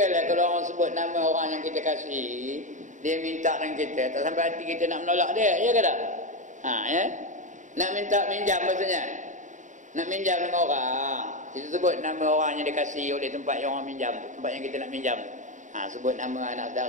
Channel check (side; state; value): left; late; 0.36 ms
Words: kalau orang sebut nama orang yang kita kasih, dia minta dengan kita, tak sampai hati kita nak menolak dia, ya ke tak? Nak minta minjam maksudnya, nak minjam dengan orang, kita sebut nama orang yang dikasihi oleh tempat yang orang minjam tu, tempat yang kita nak minjam tu. Sebut nama anak